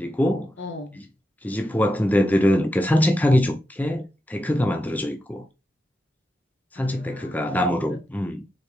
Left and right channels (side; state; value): both; normal; correlation 0.87